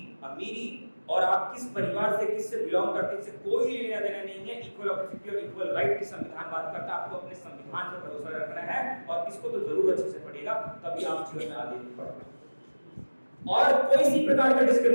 अमीरी और आप किस परिवार से किससे बिलोंग करते हैं इससे कोई लेना देना नहीं है। इक्वल अपॉर्चुनिटी और इक्वल राइट की संविधान बात करता है, आपको अपने संविधान पर भरोसा रखना है, और इसको तो जरूर अच्छे से पढ़ेगा, तभी आप जीवन में आगे बढ़ पाएंगे। और कोई सी प्रकार का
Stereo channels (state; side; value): inverted; both; correlation -1.00